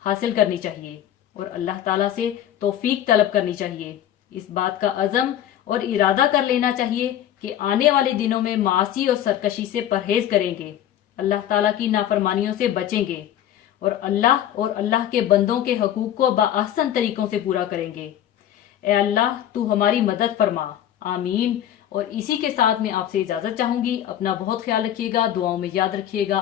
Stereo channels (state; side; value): quieter; right; 11.1 dB